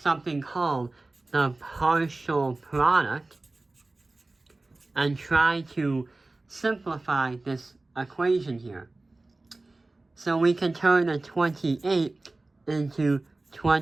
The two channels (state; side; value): quieter; left; 3.1 dB